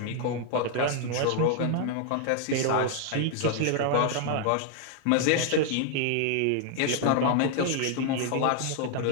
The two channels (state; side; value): different; both; correlation 0.00